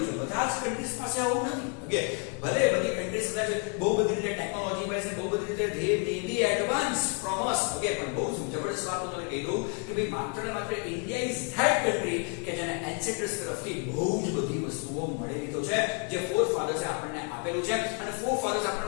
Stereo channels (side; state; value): right; quieter; 37.7 dB